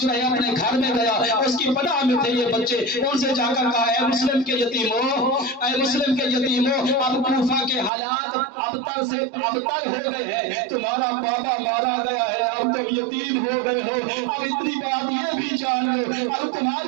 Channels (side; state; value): left; drops out; at 7.9 s